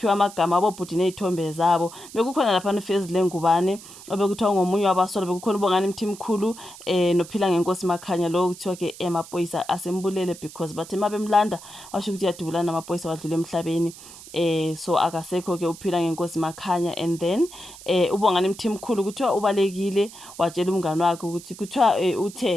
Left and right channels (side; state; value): right; noise; hiss, 17 dB below the sound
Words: amagama abobhuti nezithombe zabo. Bekukhona lapha neFezi Lengubane obekuthiwa ngomunye wabasola, bekukhona uBongani Mthimkhulu noPhila ngeNkosi Makhanya, lo kuthiwa ke emaphoyisa asembulele because bathe mabemlanda washo ukuthi yadubulana namaphoyisa wadlula emhlabeni. So akasekho ke uPhila ngeNkosi Makhanya, and then uBongani Mthimkhulu kuthiwa ubalekile watshela umngane wakhe ukuthi kuthiwa